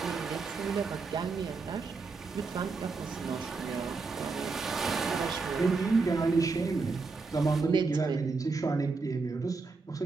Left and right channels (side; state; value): left; quieter; 4.3 dB